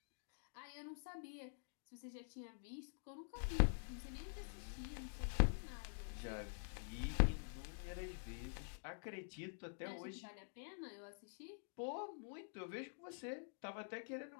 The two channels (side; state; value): right; silent; digital silence